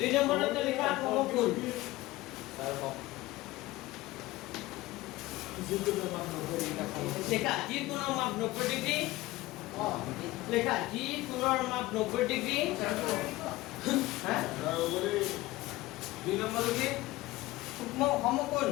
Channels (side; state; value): right; quieter; 18.6 dB